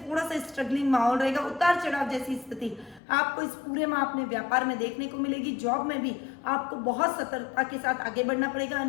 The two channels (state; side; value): drops out; right; at 3.0 s